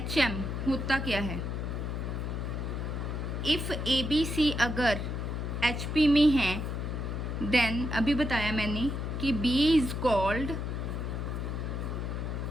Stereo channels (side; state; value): left; noise; hum, 3 dB below the sound